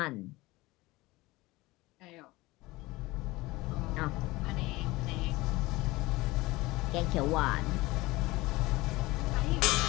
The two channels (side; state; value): right; quieter; 20.6 dB